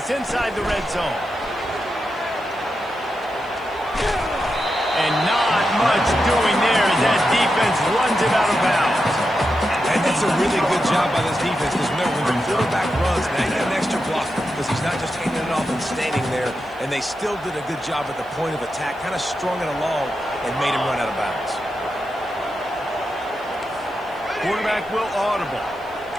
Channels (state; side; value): noise; left; hiss, 30 dB below the sound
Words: inside the red zone. And not much doing there as that defense runs it out of bounds. And that's a really good job by this defense, because remember, when the quarterback runs, now you got an extra block, because he's not just hanging it off and standing there, and they still did a good job at the point of attack, kind of strung it along and made him run out of bounds. Quarterback will audible.